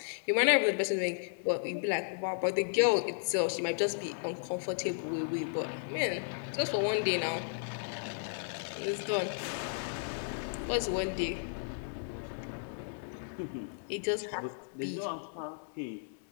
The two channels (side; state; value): right; silent; digital silence